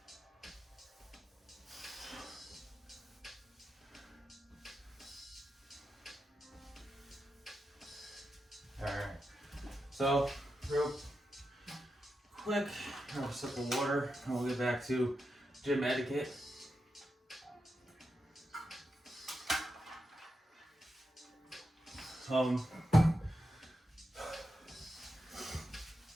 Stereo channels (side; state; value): both; normal; correlation 0.88